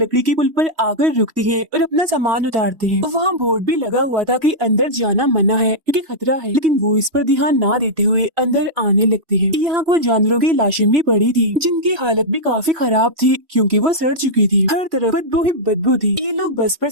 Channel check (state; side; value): late; left; 3.1 ms